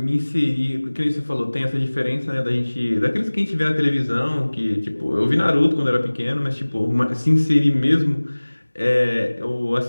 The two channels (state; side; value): inverted; both; correlation -1.00